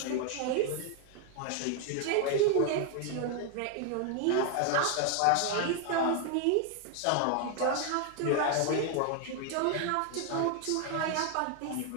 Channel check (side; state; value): both; different; correlation 0.00